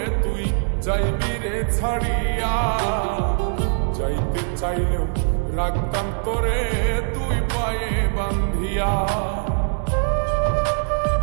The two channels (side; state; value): left; silent; digital silence